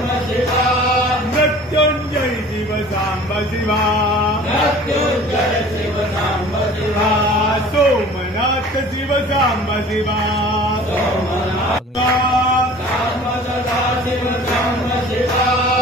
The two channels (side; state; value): both; normal; correlation 0.45